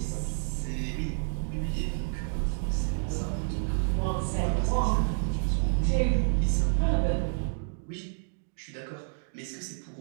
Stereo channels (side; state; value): left; silent; digital silence